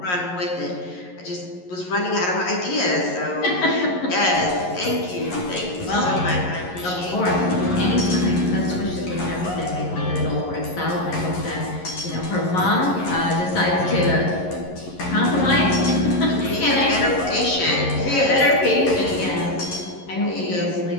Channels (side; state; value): right; late; 11 ms